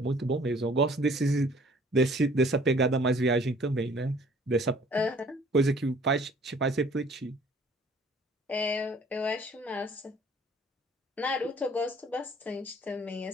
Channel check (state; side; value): normal; both; correlation 0.55